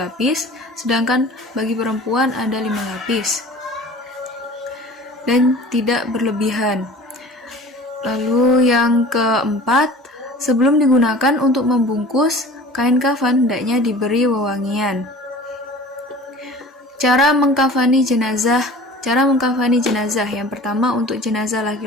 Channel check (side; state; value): both; normal; correlation 0.42